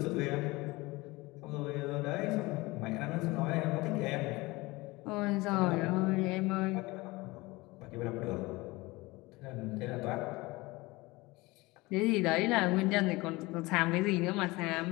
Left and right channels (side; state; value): right; quieter; 22.1 dB